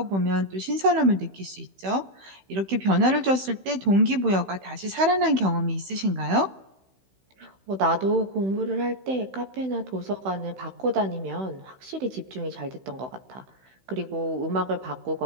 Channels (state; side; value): late; left; 16 ms